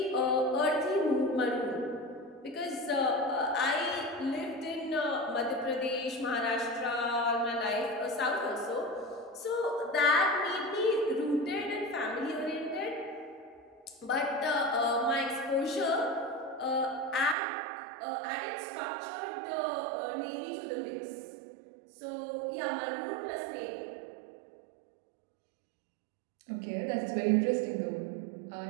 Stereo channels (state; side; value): drops out; left; at 17.4 s